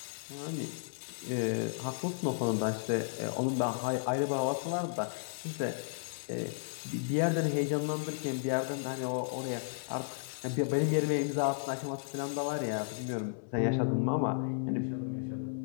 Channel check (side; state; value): right; silent; 55 dB below the other